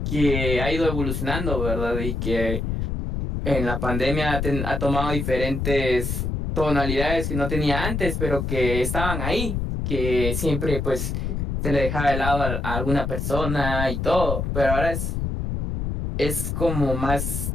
que ha ido evolucionando, ¿verdad? Y que en la pandemia ha tomado diferentes tonalidades que no tenía antes, pero que estaban ahí, que siempre pues se le dejaba de lado a alguna persona y todo, pero ahora es como más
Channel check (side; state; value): left; noise; rumble, 2 dB below the sound